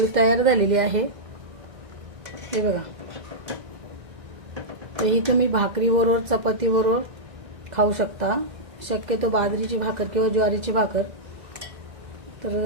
तयार झालेली आहे. हे बघा, तर ही तुम्ही भाकरीबरोबर चपातीबरोबर खाऊ शकता. शक्यतो बाजरीची भाकर किंवा ज्वारीची भाकर,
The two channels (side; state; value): left; late; 2.0 ms